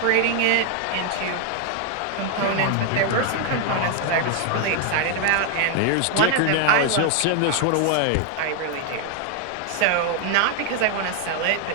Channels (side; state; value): both; different; correlation 0.00